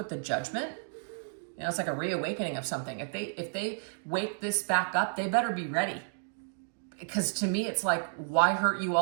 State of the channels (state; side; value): silent; left; digital silence